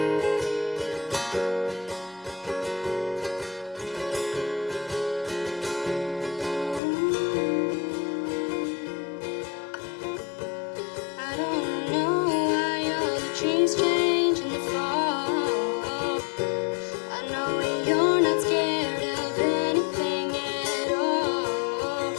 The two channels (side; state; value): right; drops out; at 6.8 s